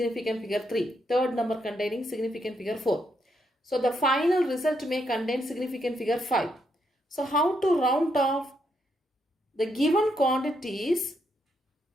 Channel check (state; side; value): normal; both; correlation 0.78